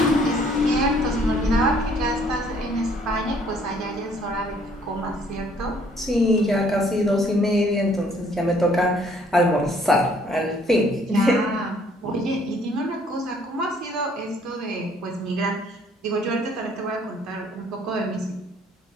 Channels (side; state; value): both; normal; correlation 0.62